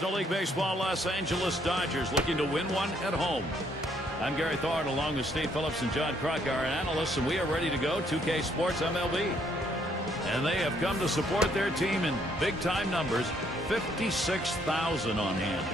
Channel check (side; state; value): both; normal; correlation 0.68